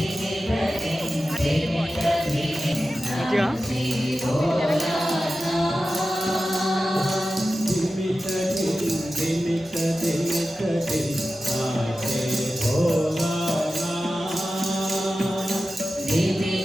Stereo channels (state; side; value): normal; both; correlation 0.93